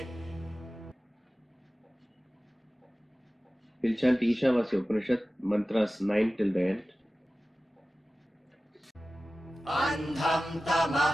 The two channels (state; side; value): normal; both; correlation 0.96